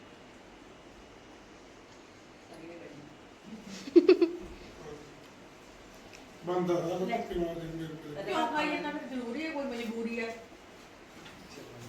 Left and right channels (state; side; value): identical; both; correlation 1.00